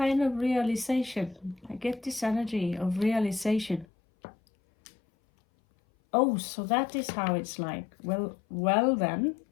of realization. I get this energy of realization. Oh, so that is how it's like. Well then,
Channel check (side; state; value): right; drops out; at 3.9 s